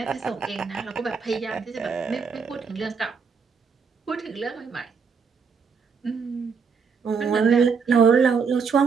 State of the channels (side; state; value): left; quieter; 5.7 dB